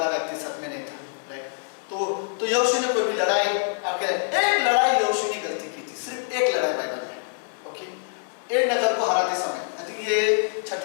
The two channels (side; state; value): right; silent; 62 dB below the other